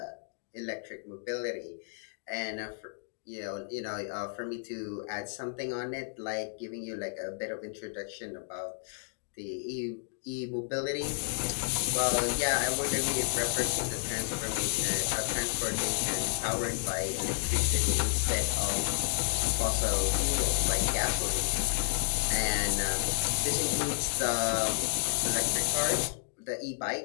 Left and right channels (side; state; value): right; silent; digital silence